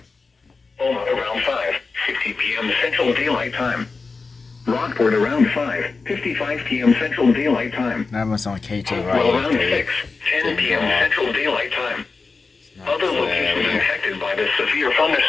Oma around 5:50 p.m. Central Daylight Time. Rockport around 5:55 p.m. Central Daylight Time. That was on KT Hopewell around right. 6:10 p.m. Central Daylight Time. Other locations impacted by this severe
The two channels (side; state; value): right; quieter; 4.3 dB